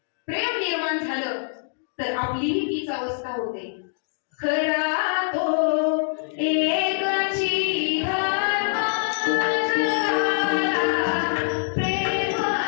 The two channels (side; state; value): right; silent; 62 dB below the other